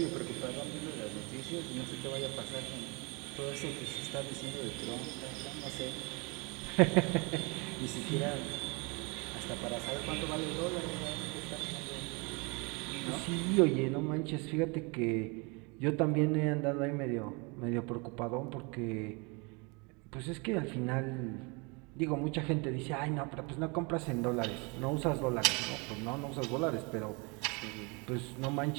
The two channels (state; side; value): quieter; left; 30.2 dB